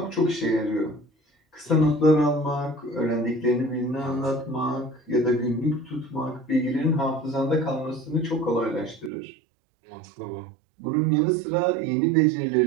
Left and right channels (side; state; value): left; drops out; at 9.1 s